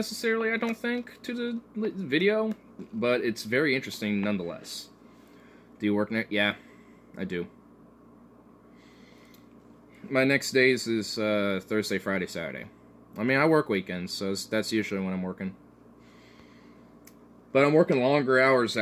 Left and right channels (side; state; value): both; identical; correlation 1.00